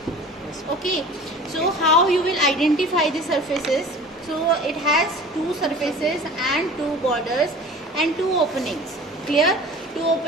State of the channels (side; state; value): both; normal; correlation 0.41